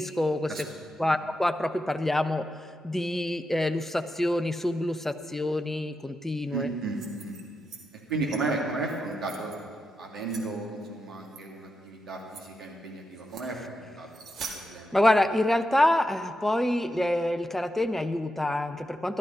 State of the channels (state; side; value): normal; both; correlation 0.86